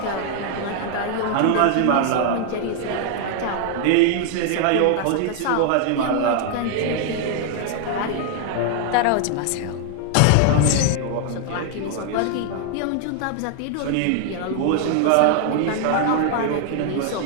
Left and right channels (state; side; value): different; both; correlation 0.00